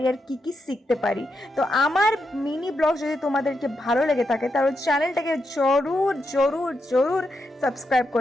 আর কি কি শিখতে পারি। তো আমার মিনি ব্লগ যদি তোমাদেরকে ভালো লেগে থাকে তাহলে চ্যানেলটাকে জরুর জরুর জরুর সাবস্ক্রাইব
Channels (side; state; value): both; normal; correlation 0.84